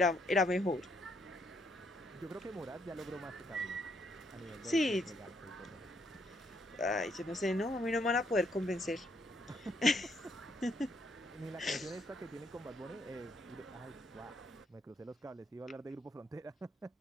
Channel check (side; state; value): both; normal; correlation 0.72